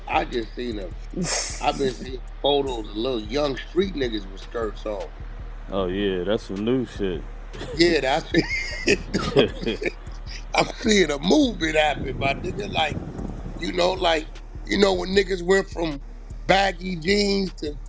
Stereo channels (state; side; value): identical; both; correlation 1.00